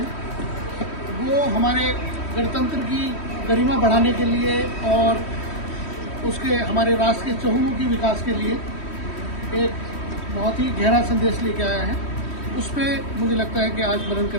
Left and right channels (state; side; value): late; right; 3.1 ms